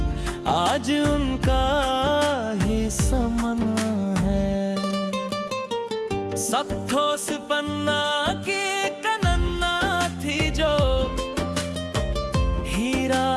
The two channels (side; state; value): both; identical; correlation 1.00